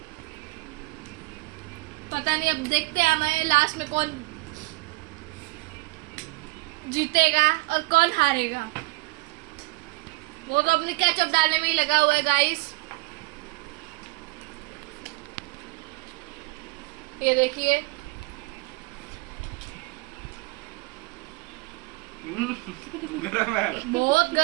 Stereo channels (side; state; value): left; quieter; 24.9 dB